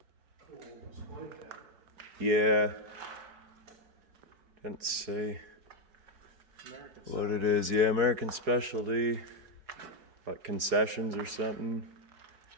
Yeah, couldn't say what it is. Yeah, American Specialty, like concessions or something.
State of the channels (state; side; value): late; left; 4.7 ms